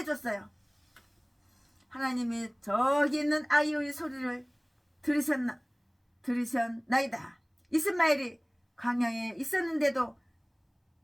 하나님이 저기 있는 아이의 소리를 들으셨나이다. 이스마엘이 광야에 있었는데도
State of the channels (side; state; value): both; identical; correlation 1.00